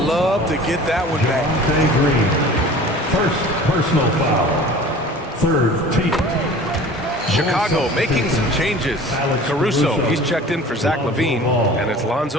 to get that one back. Green. First personal foul. Third team. Chicago making some changes. Caruso, he's checked in for Zach LaVine, and it's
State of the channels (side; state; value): both; normal; correlation 0.43